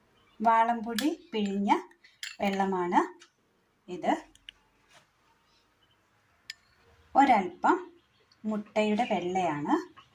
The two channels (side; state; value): both; identical; correlation 1.00